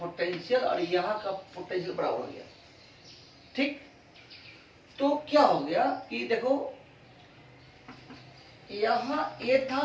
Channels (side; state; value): both; identical; correlation 1.00